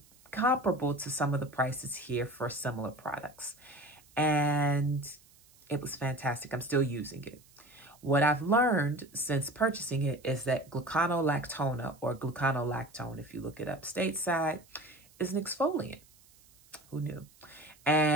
comparable to some of the prices here for similar products. And it was fantastic. I'm still using it. What I've learned since purchasing it is that gluconolactona, or gluconolactone, if you look it up stateside, is an exfoliant. Who knew?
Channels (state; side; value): noise; right; hiss, 28 dB below the sound